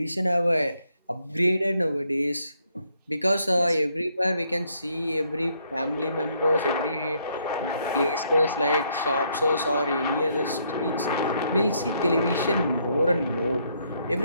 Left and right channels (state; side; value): inverted; both; correlation -0.72